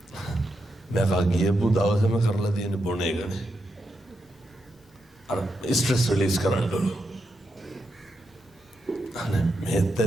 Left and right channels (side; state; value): both; normal; correlation 0.84